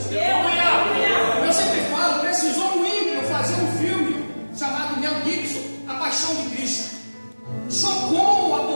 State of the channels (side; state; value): both; inverted; correlation -1.00